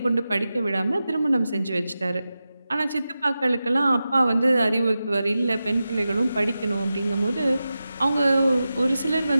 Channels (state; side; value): inverted; both; correlation -0.93